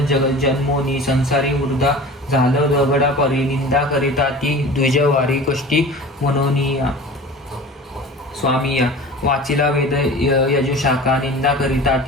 जन्मोनी संसारी वृद्धा झालं दगडा परी. निंदा करिता ती द्विजवारी कष्टी मनोनिया. स्वामिया वाचिला वेद यजुशाखा. निंदा करिता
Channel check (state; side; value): normal; both; correlation 0.38